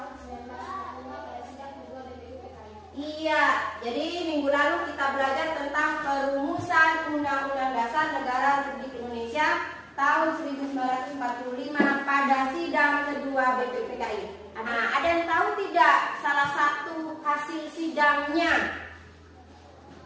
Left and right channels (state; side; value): identical; both; correlation 1.00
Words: 1945 pada sidang kedua BPUPKI. Iya, jadi minggu lalu kita belajar tentang perumusan Undang-Undang Dasar Negara Republik Indonesia tahun 1945 pada sidang kedua BPUPKI. Nah, ada yang tahu tidak salah satu hasil sidangnya?